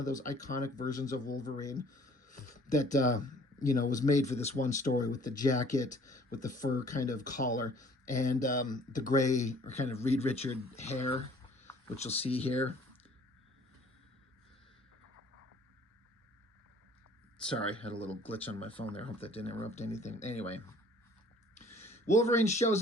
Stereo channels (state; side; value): normal; both; correlation 0.54